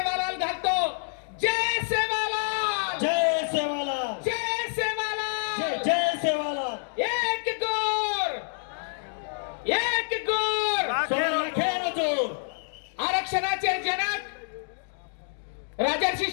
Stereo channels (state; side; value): silent; right; digital silence